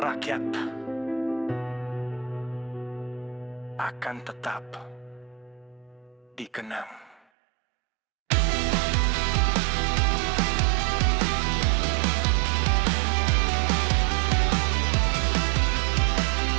akan tetap dikenang.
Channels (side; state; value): left; drops out; at 7.2 s